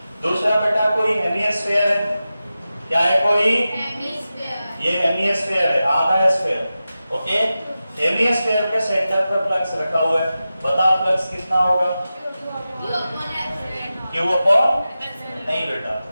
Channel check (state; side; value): inverted; both; correlation -0.93